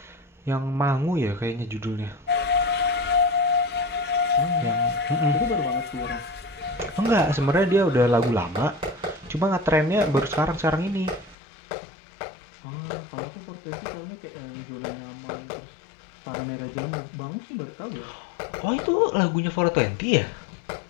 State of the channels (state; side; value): drops out; right; at 11.4 s